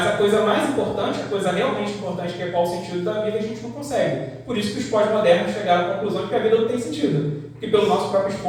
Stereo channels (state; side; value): identical; both; correlation 1.00